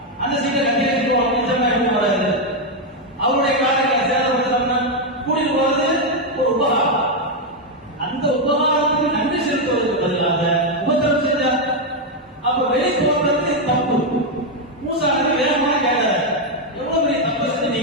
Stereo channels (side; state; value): both; normal; correlation 0.03